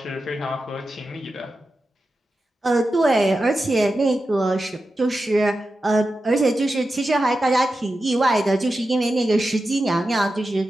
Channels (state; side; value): normal; both; correlation 0.91